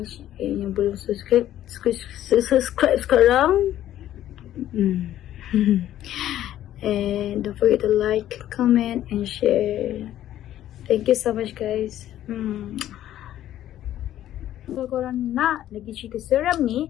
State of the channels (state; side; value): quieter; right; 12.5 dB